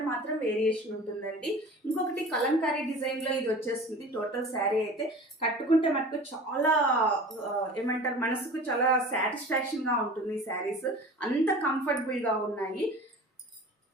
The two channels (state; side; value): normal; both; correlation 0.40